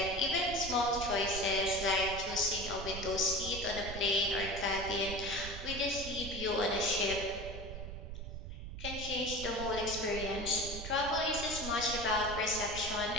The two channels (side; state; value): right; noise; rumble, 8 dB below the sound